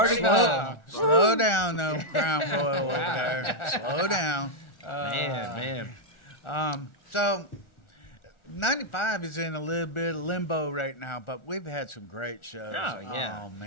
slow, foul. slow down, though, Crown Royal over there. Slow down. Man. So, 95 is in a little bit of limbo right now, but we've had some great shows. Oh, yeah. Oh,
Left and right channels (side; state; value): right; late; 1.4 ms